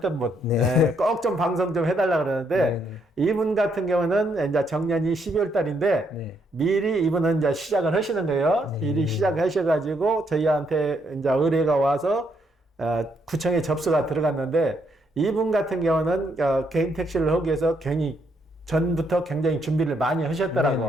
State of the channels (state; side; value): normal; both; correlation 0.74